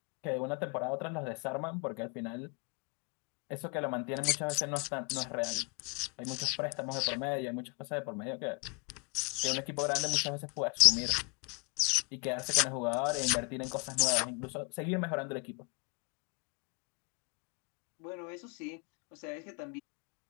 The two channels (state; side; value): quieter; right; 30.4 dB